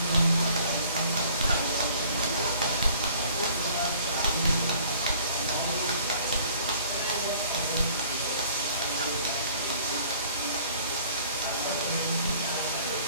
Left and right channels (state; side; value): inverted; both; correlation -0.54